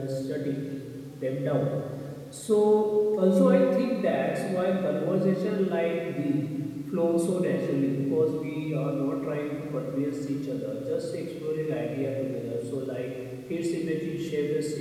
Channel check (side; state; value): both; identical; correlation 1.00